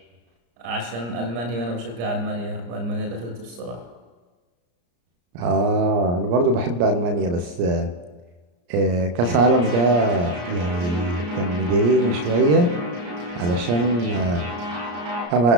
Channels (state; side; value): late; left; 34 ms